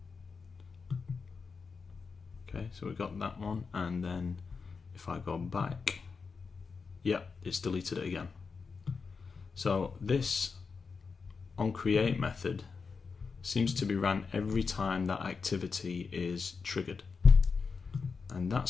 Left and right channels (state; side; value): quieter; right; 5.0 dB